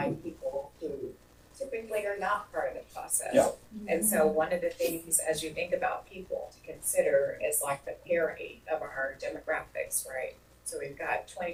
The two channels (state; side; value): identical; both; correlation 1.00